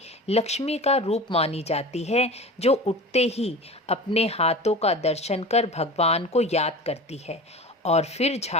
लक्ष्मी का रूप मानी जाती है जो उठते ही अपने हाथों का दर्शन कर भगवान को याद करती है और फिर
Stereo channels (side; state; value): both; normal; correlation 0.34